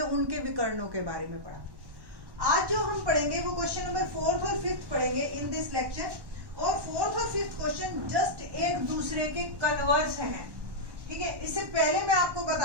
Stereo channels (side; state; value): left; late; 1.1 ms